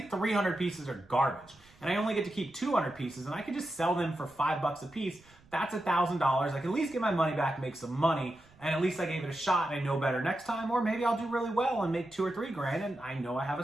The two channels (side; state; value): right; noise; rumble, 28 dB below the sound